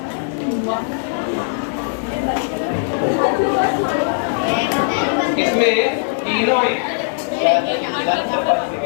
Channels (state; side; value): silent; right; 66 dB below the other